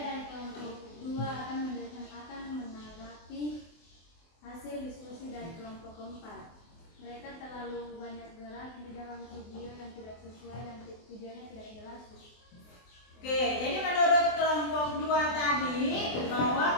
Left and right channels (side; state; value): right; late; 24 ms